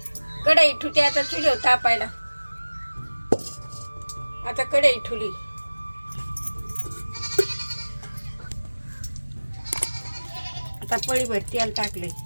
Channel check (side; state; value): both; inverted; correlation -1.00